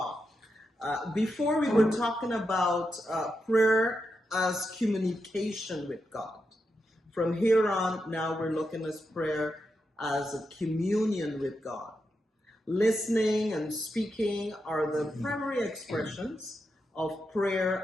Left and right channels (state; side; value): normal; both; correlation 0.86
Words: Before we were talking about prayer as communication with God. From here on, now we're looking at prayer as a communion with God. Listening and speaking are the primary expressions of